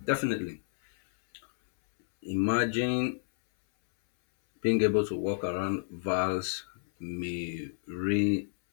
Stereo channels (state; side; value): silent; right; 58 dB below the other